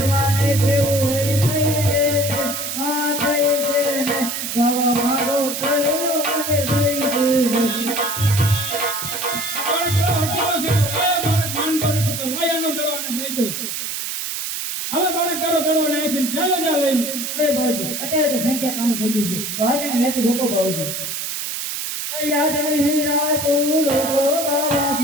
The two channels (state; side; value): noise; right; hiss, 4 dB below the sound